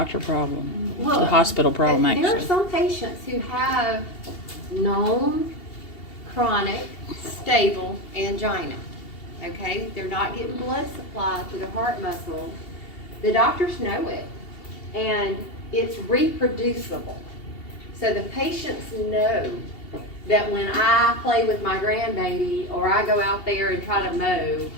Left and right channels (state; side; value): late; right; 2.7 ms